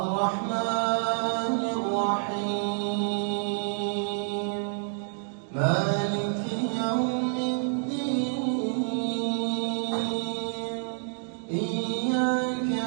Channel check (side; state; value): left; silent; digital silence